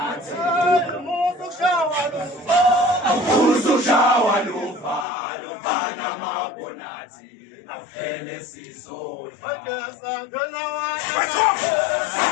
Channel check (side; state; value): right; drops out; at 5.1 s